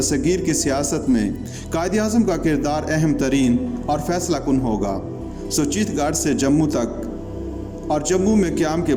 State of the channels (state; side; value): identical; both; correlation 1.00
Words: کی سیاست میں قائد اعظم کا کردار اہم ترین اور فیصلہ کن ہوگا۔ چیت گاٹ سے جموں تک اور جموں میں قیام کے